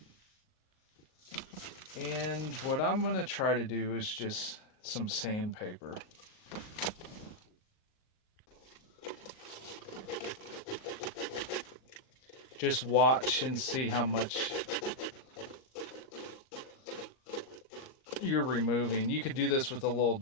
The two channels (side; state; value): right; late; 38 ms